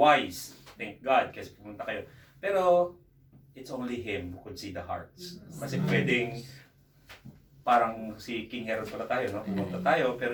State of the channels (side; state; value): both; identical; correlation 1.00